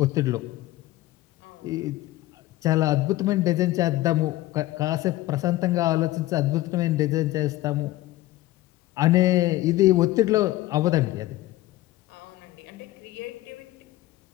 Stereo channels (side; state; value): right; quieter; 16.7 dB